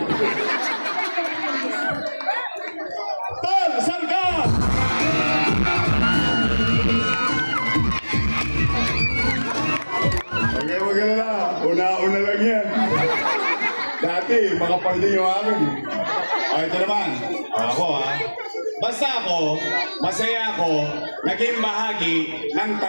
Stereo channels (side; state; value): both; inverted; correlation -1.00